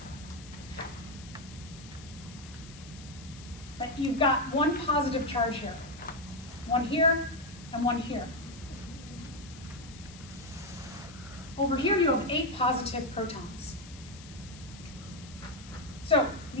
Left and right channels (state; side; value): noise; left; hiss, 18 dB below the sound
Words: that you've got one positive charge here. One here, and one here. Over here you have 8 positive protons. So